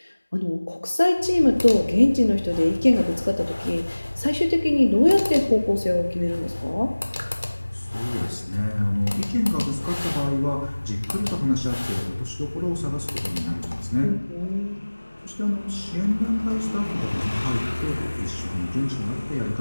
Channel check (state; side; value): inverted; both; correlation -1.00